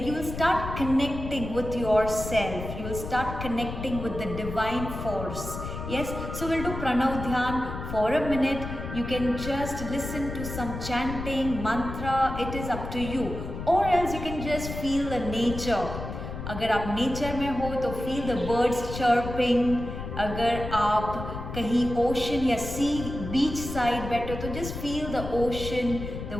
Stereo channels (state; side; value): noise; left; rumble, 7 dB below the sound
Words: you will start connecting with your self. You will start connecting with the divine force. Yes, so we'll do Pranav Dhyan for a minute. You can just listen to some chanting, mantra, it is up to you. Or else you can just feel the nature. अगर आप नेचर में हो तो feel the birds chirping. अगर आप कहीं ओशन या सी beach side बैठे हो तो just feel the ocean,